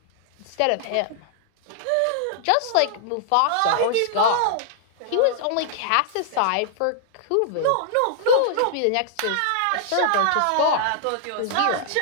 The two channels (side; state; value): both; different; correlation -0.01